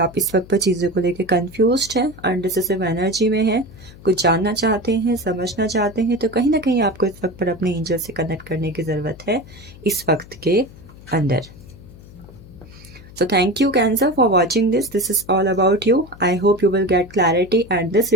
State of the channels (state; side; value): noise; left; hum, 20 dB below the sound